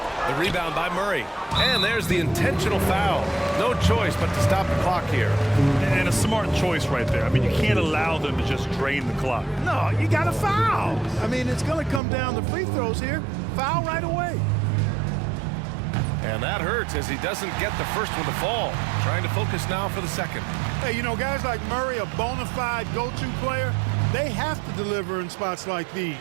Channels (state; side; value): drops out; left; at 12.0 s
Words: rebound by Murray. And there's the intentional foul. No choice but to stop the clock here. And a smart choice right there. I mean, you can't allow them to just drain the clock. No, you got to foul. I mean, it's going to come down to free throws here. Foul right away. And that hurts as he doesn't get the first one to fall. Trying to focus now for the second. Hey, you know, guys like Murray, a bona fide go-to player, they have to deliver in spots like these